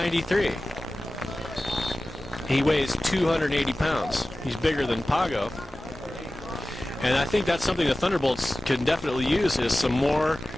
He weighs 280 pounds. He's bigger than Pago. And I think that's something the Thunderbolts can definitely use, is some more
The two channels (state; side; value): normal; both; correlation 0.96